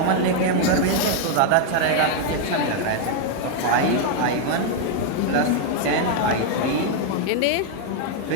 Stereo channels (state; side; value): different; both; correlation 0.00